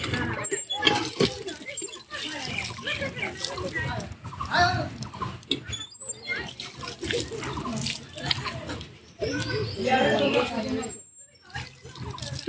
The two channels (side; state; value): both; identical; correlation 1.00